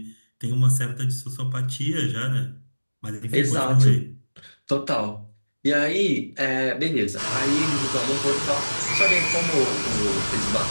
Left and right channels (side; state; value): both; inverted; correlation -1.00